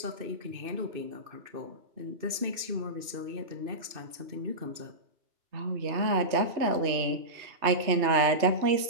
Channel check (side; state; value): left; late; 2.6 ms